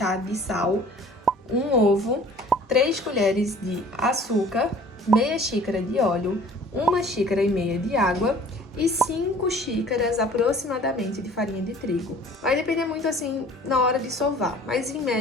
de sal, um ovo, 3 colheres de açúcar, meia xícara de óleo, 1,5 xícaras de água e 5 xícaras aproximadamente de farinha de trigo. Vai depender muito assim na hora de sovar, mas em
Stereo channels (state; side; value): normal; both; correlation 0.49